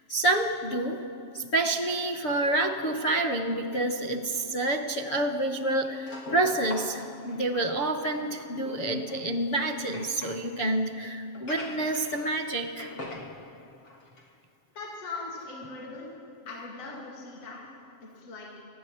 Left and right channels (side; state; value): right; late; 7.3 ms